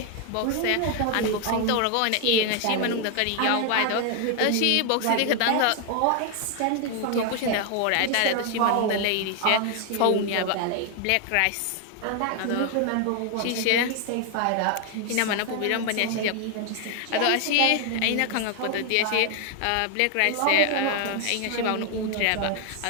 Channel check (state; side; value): different; both; correlation 0.00